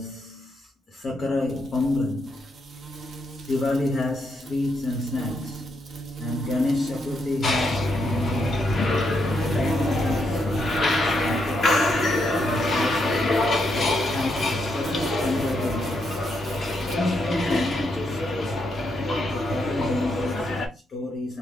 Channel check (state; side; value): normal; both; correlation 0.79